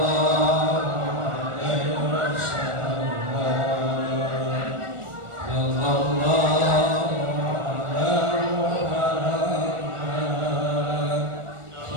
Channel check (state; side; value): late; left; 1.4 ms